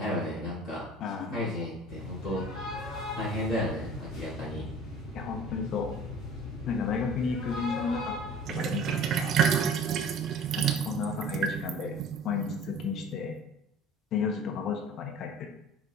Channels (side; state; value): both; normal; correlation 0.44